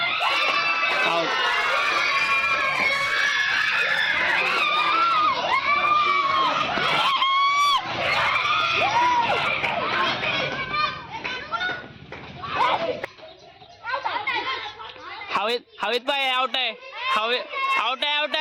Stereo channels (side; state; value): both; identical; correlation 1.00